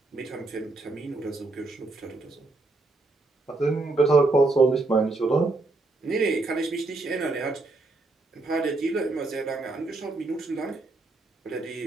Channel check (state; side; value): quieter; left; 3.2 dB